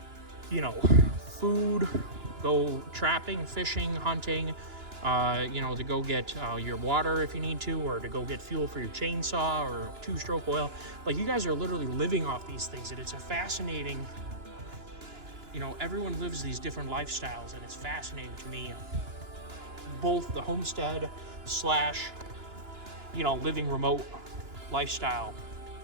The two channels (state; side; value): late; left; 2.9 ms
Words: food, go trapping, fishing, hunting, to go get your water if you need to, or to go get fuel for your chainsaw or 2-stroke oil. Like, you guys are literally living off these things, and it's a fascinating, everyone lives these different lifestyles, and it's fascinating to me, both the homestead / living remote lifestyle,